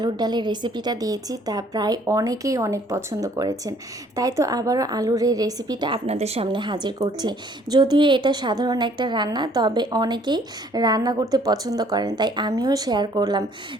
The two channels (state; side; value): normal; both; correlation 0.60